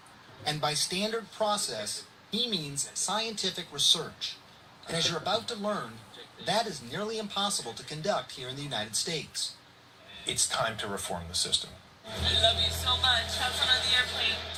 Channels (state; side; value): identical; both; correlation 1.00